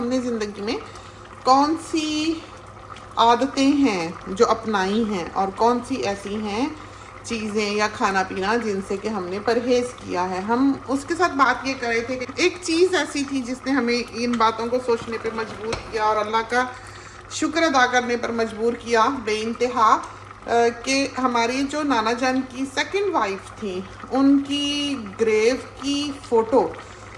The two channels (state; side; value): identical; both; correlation 1.00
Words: ज़िंदगी में कौन सी आदतें हैं जो अपनाई हैं और कौन सी ऐसी हैं चीज़ें या खाना पीना जिनसे कि हमने परहेज़ किया है। हम उसके साथ बात ये कर रहे थे कि एक चीज़ ऐसी थी जिसने हमें इन बातों को सोचने पे मजबूर किया और अल्लाह का शुक्र अदा करने पर मजबूर किया बेइंतहा, कि हमारी जो नाना जान की सेकंड वाइफ थी, उनकी ग्रेव की फ़ोटो